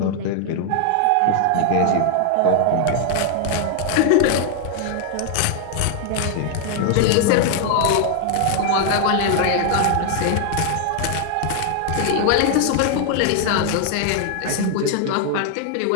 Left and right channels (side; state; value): both; different; correlation 0.00